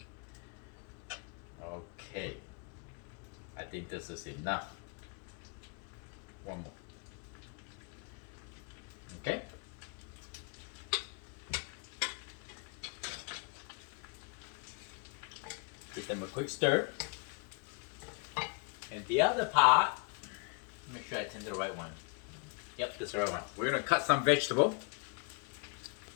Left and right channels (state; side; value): quieter; right; 34.7 dB